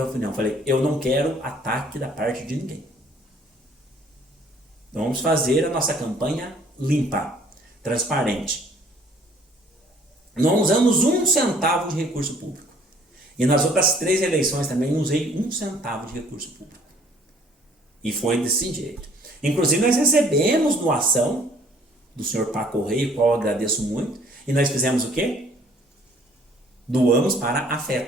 reunião, falei, eu não quero ataque da parte de ninguém. Então vamos fazer a nossa campanha limpa, transparente. Não usamos 1 centavo de recurso público. E nas outras 3 eleições também não usei 1 centavo de recurso público. E foi desse jeito. Inclusive nós recebemos doação do senhor Paco Rei, o qual eu agradeço muito. E nós fizemos o quê? Doamos para a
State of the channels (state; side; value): normal; both; correlation 0.58